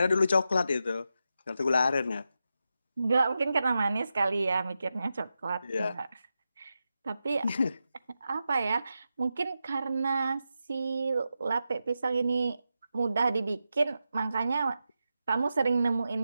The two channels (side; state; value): both; inverted; correlation -0.89